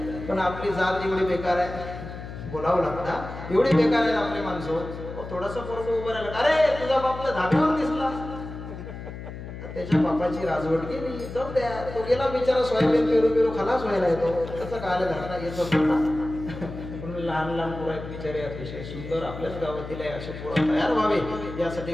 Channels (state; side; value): noise; left; hum, 10 dB below the sound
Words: पण आपली जात एवढी बेकार आहे, बोलावं लागतं, एवढी बेकार आहे आपली माणसं. थोडंसं पोरग उभं राहिलं, अरे तुझा बापला धाब्यावर दिसला, त्याच्या बापाची राजवट गेली. जाऊ द्या, तो गेला बिचारा सोयाबीन पेरू खलास व्हायला येतो. तसं काय झाला येतो पण लहान लहान पोरं आहेत बिचारे, अतिशय सुंदर. आपल्याच गावातील आहे, असे पोरं तयार व्हावे यासाठी